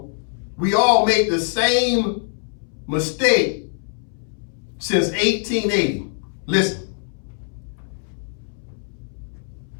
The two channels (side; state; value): right; silent; 63 dB below the other